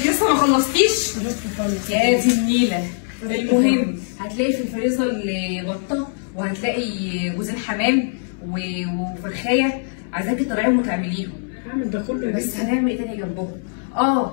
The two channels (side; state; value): right; silent; 65 dB below the other